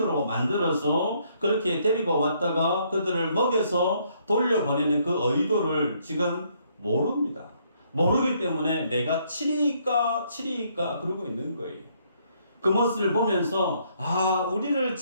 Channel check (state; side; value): inverted; both; correlation -0.69